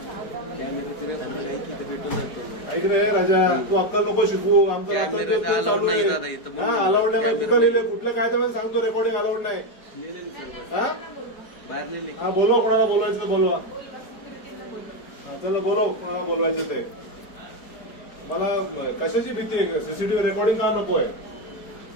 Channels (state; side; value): late; right; 4.8 ms